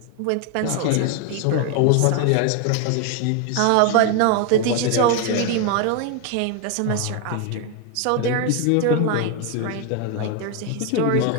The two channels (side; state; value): both; different; correlation 0.01